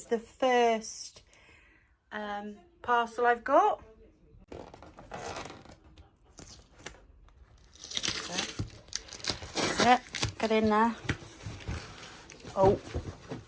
the first parcel I've got. That's it. Get in there. Oh,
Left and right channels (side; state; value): both; identical; correlation 1.00